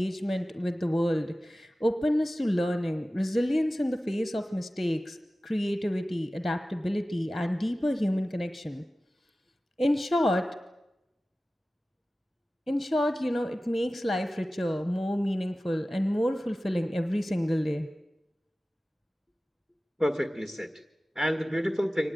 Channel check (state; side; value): normal; both; correlation 0.96